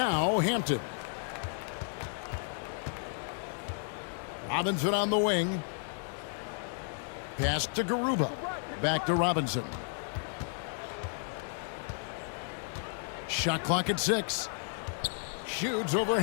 Hampton. Robinson on the wing. Pass to Garuba. Back to Robinson. Shot clock at 6. Shoots over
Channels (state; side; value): silent; right; 56 dB below the other